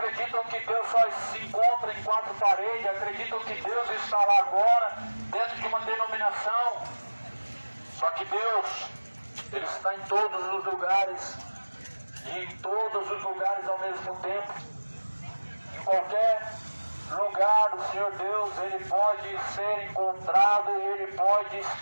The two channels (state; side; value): inverted; both; correlation -1.00